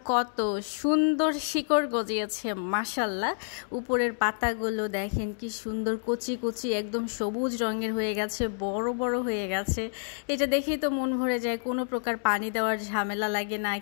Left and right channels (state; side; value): silent; right; digital silence